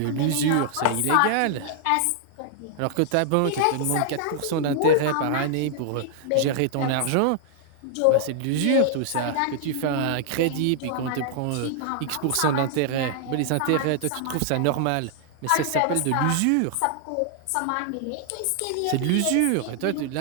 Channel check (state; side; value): different; both; correlation -0.01